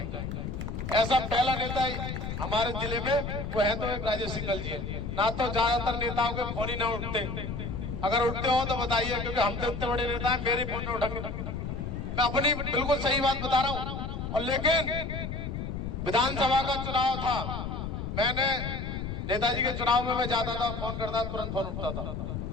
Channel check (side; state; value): left; noise; rumble, 5 dB below the sound